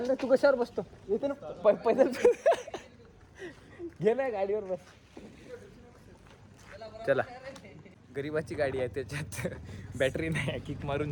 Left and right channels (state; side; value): identical; both; correlation 1.00